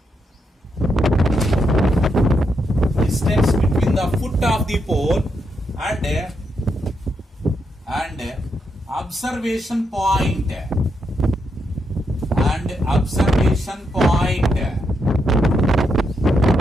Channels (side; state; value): both; normal; correlation 0.81